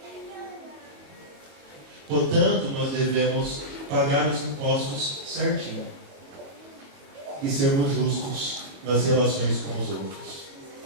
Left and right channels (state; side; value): late; left; 22 ms